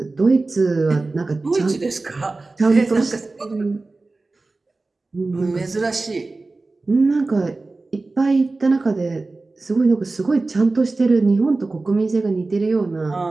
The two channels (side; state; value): left; quieter; 3.4 dB